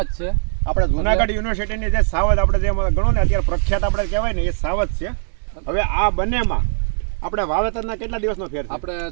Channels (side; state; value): left; silent; digital silence